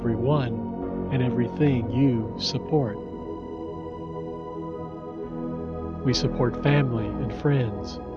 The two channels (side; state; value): both; identical; correlation 1.00